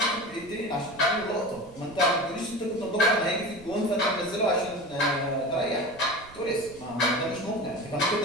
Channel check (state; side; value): noise; right; rumble, 21 dB below the sound